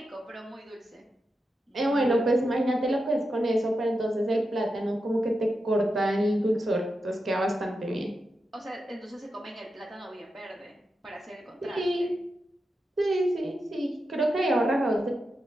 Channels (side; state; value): both; normal; correlation 0.88